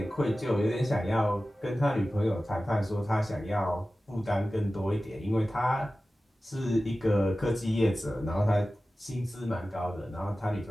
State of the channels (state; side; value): normal; both; correlation 0.95